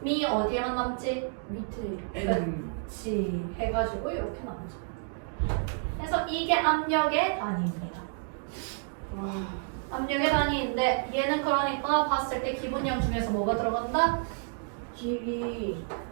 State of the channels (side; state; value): left; silent; 58 dB below the other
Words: 미 어디에만 남지? 밑에 N. 그렇지. 해가지고 이렇게 나오죠. 그래서 이게 압력의 단위입니다. 와. 압력의 단위인데 얘는 그러니까 봤을 때 기본형 중에서 뭐가 들어간다? 길이